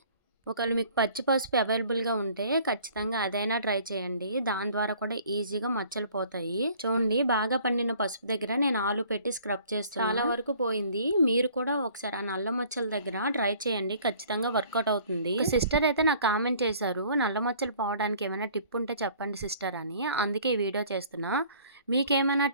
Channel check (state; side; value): inverted; both; correlation -0.54